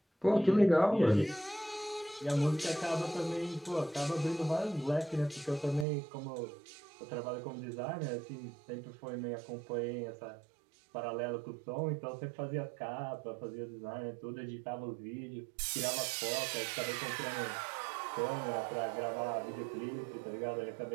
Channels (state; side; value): drops out; left; at 5.9 s